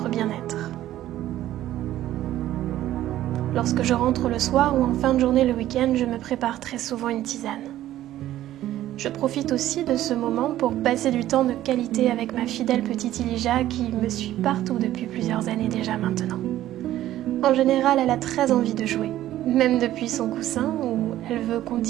bien-être. Lorsque je rentre le soir ou en fin de journée le week-end, je me prépare très souvent une tisane. Je profite aussi de ce moment pour passer du temps de qualité avec ma fidèle petite Elijah qui me suit partout depuis plusieurs années déjà maintenant. En général, elle a très envie de jouer, même depuis son coussin où elle veut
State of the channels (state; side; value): quieter; left; 13.6 dB